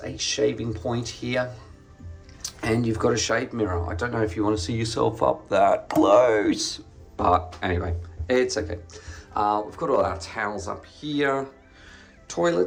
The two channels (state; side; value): identical; both; correlation 1.00